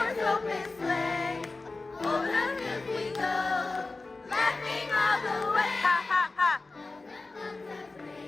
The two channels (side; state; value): right; quieter; 3.5 dB